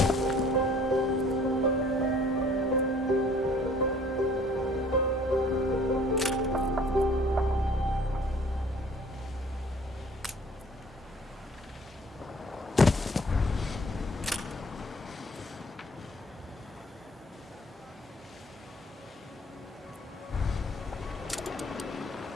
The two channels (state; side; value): normal; both; correlation 0.54